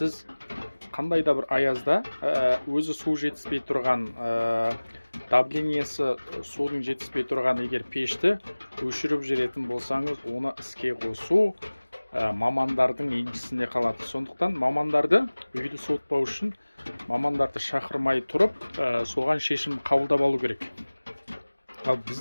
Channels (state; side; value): inverted; both; correlation -1.00